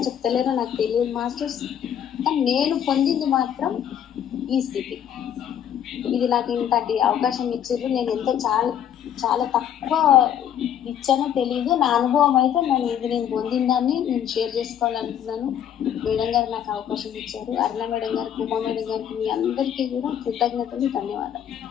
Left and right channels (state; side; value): quieter; right; 9.6 dB